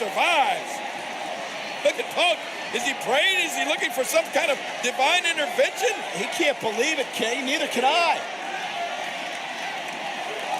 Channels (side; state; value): both; identical; correlation 1.00